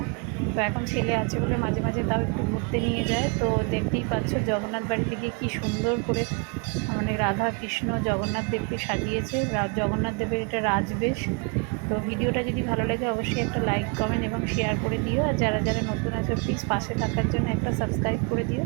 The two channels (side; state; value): left; quieter; 34.4 dB